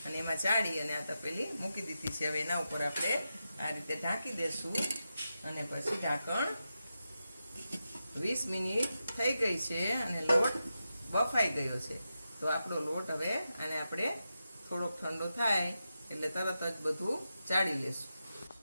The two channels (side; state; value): both; inverted; correlation -0.89